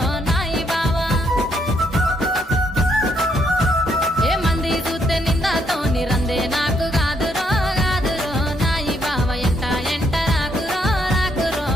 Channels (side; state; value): both; normal; correlation 0.73